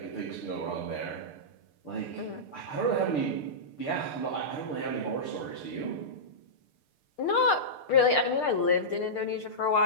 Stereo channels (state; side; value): late; right; 6.7 ms